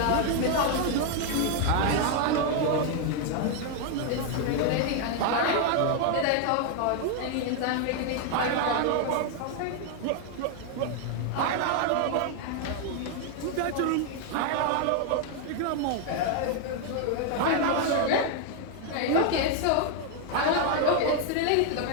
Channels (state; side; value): different; both; correlation 0.00